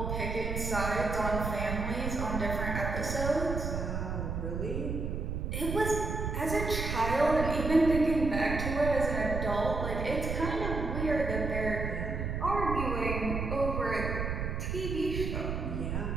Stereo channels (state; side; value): noise; right; rumble, 3 dB below the sound